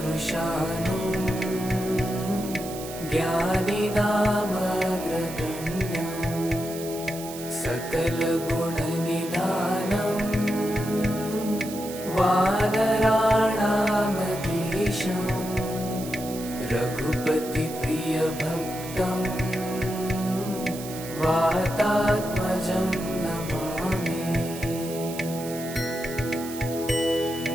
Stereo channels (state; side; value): noise; right; hiss, 12 dB below the sound